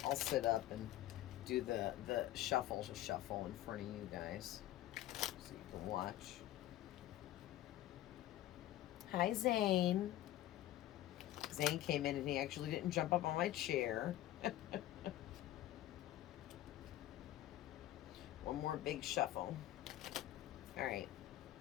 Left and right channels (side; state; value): right; quieter; 14.1 dB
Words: up and do the shuffle in front of you guys so you can watch. Hi, Zane. Zane came in and he actually didn't jump up on my chair. One more big shuffle. All right.